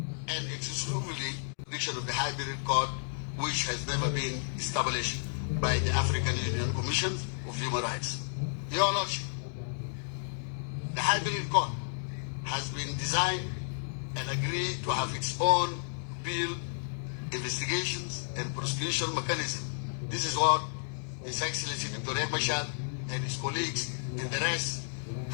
and exclusively jurisdiction of the hybrid court, which has never been established by the African Union Commission of Human Rights. Your Lordship, the hybrid court has been designed and agreed to have its own built investigations and prosecution mechanism. This is what His Excellency Dr. Riek Machar and his colleagues and the rest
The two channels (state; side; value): silent; right; digital silence